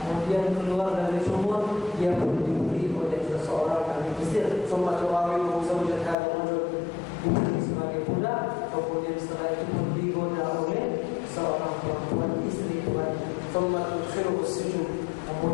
Kemudian keluar dari sumur, dia dibeli oleh seseorang dari Mesir. ثم تراوده زوجة هذا الرجل. Dibeli sebagai budak. Kemudian setelah itu pun digoda oleh seorang perempuan istri tuannya. ثم تدخله السجن.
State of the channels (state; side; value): drops out; right; at 6.2 s